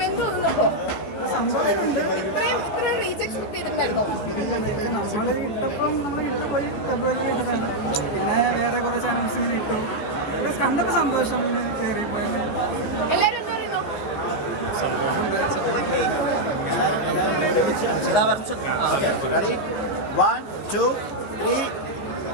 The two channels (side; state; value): right; late; 14 ms